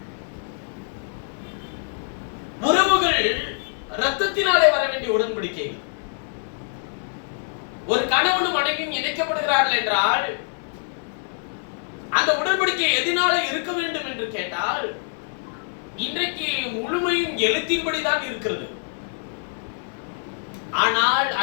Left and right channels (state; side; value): silent; right; digital silence